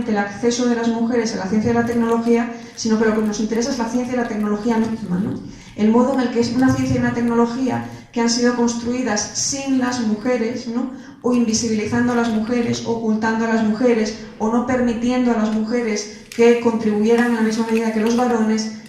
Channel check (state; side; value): identical; both; correlation 1.00